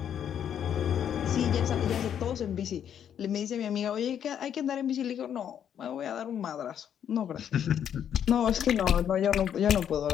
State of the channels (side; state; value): right; quieter; 9.1 dB